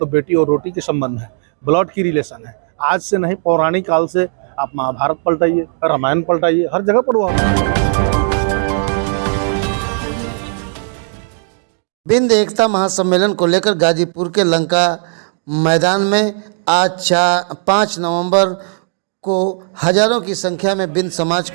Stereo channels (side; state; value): left; silent; 68 dB below the other